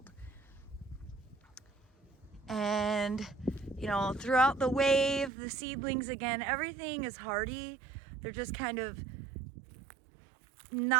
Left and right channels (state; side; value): drops out; left; at 5.3 s